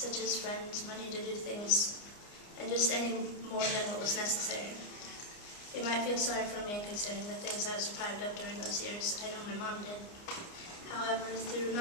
as friends, money to do things, and just any more than what was necessary. You might feel sorry for me considering the things I was deprived of during those years. I know my mom did. However, through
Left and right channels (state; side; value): late; right; 29 ms